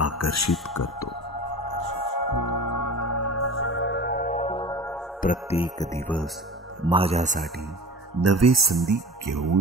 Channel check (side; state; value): both; normal; correlation 0.36